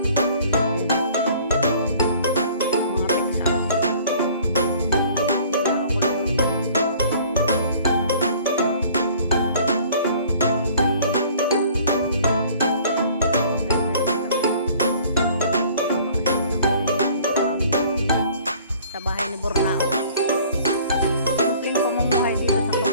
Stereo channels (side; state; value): both; inverted; correlation -0.52